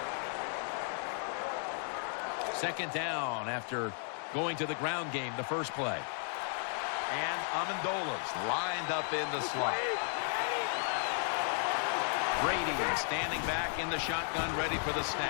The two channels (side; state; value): right; silent; 55 dB below the other